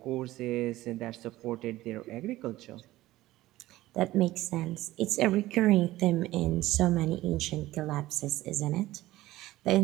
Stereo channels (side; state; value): left; quieter; 16.6 dB